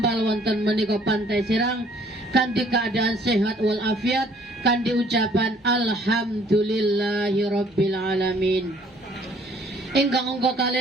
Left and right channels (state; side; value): normal; both; correlation 0.60